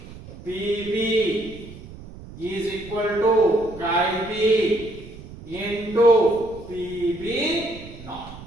PB is equal to chi B into PB naught.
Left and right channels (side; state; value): right; noise; rumble, 16 dB below the sound